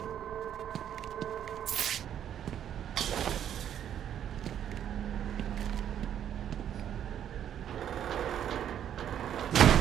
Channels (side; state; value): left; quieter; 9.9 dB